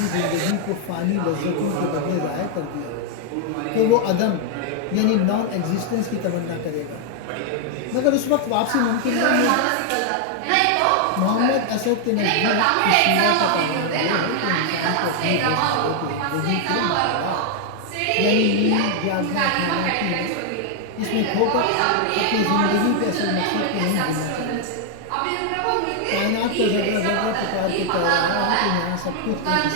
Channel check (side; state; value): both; different; correlation 0.00